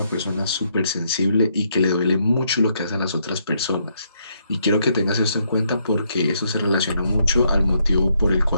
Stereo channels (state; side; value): inverted; both; correlation -0.75